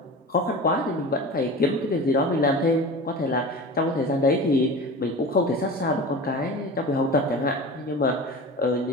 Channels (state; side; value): normal; both; correlation 0.33